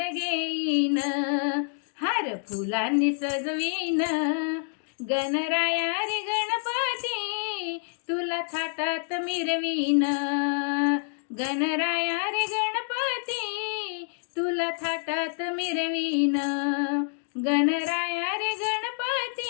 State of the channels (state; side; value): silent; right; 60 dB below the other